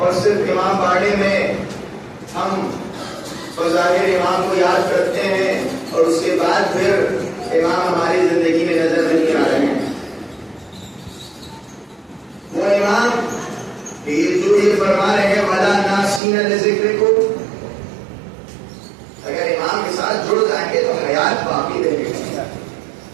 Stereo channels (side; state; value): left; drops out; at 16.2 s